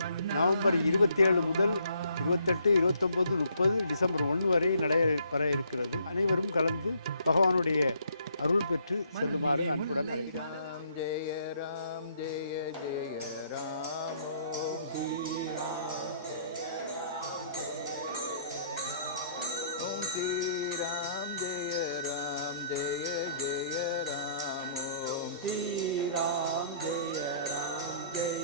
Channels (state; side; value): inverted; both; correlation -0.65